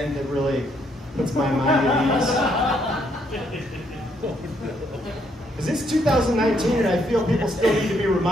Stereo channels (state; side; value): normal; both; correlation 0.72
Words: that really puts my mind at ease. Because it's 2019 and I feel people still need to be